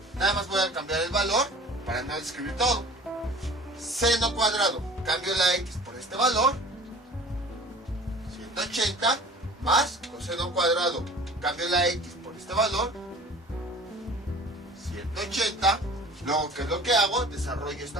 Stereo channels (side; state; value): both; normal; correlation 0.45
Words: nada más voy a cambiar el valor para no escribir todo. Seno cuadrado, cambio la x por este valor, 180, más coseno cuadrado, cambio la x por este valor, 180. Luego, ¿qué es lo que hago? Desarrollo